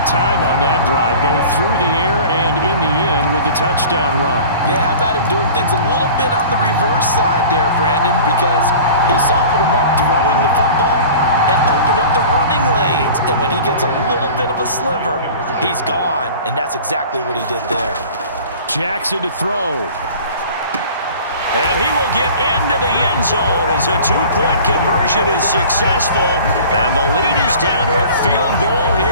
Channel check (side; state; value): both; inverted; correlation -0.42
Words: time on that drive, both through the air and in the end with the touchdown run. Yeah, how about him doing things a little bit on the reverse side there, Brandon, because he softened him up throwing the football and opened up the running lanes. And when he gets a little bit of a sliver, he's gone. And that's exactly what he did there. Jackson to throw. And he will get into the end zone as a two-point conversion is successful. And the lead is down to a field goal